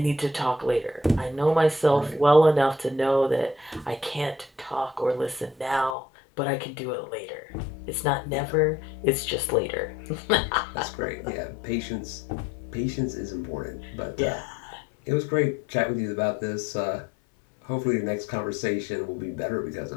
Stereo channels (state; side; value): drops out; right; at 6.0 s